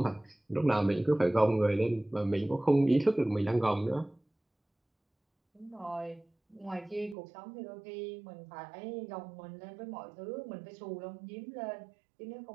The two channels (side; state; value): left; drops out; at 7.2 s